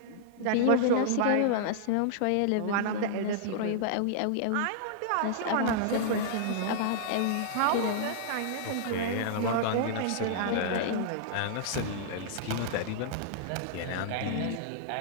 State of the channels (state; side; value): different; both; correlation -0.02